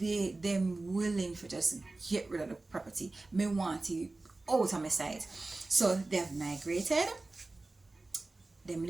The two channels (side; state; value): left; quieter; 3.2 dB